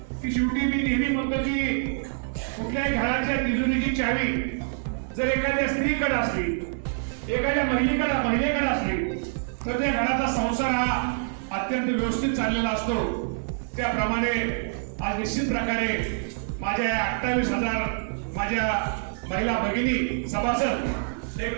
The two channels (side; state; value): left; silent; digital silence